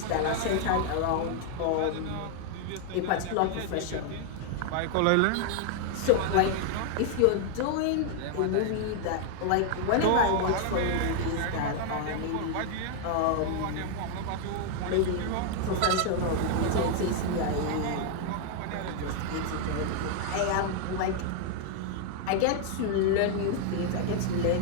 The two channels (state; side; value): different; both; correlation 0.00